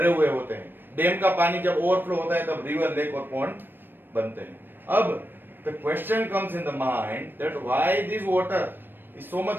हुए होते हैं. डैम का पानी जब ओवरफ्लो होता है तब रिवर, लेक और पॉन्ड बनते हैं. अब the question comes in the mind that why this water is so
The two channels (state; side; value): late; left; 0.095 ms